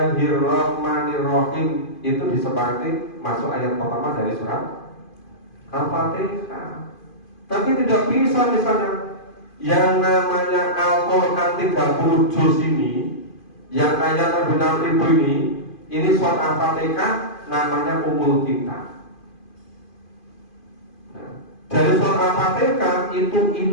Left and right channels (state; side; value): late; right; 2.5 ms